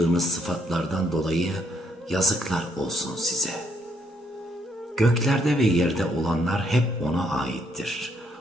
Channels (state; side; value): normal; both; correlation 0.71